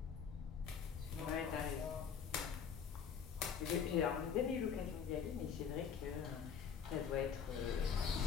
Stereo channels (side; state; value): right; quieter; 7.0 dB